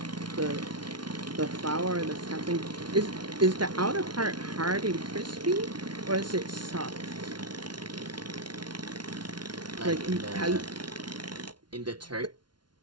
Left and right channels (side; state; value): left; late; 0.70 ms